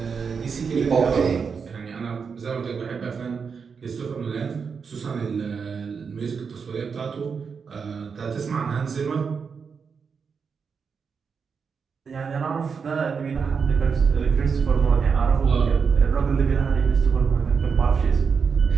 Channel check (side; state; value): left; quieter; 5.9 dB